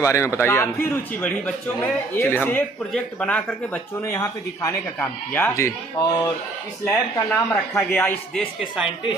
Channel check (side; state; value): left; quieter; 3.1 dB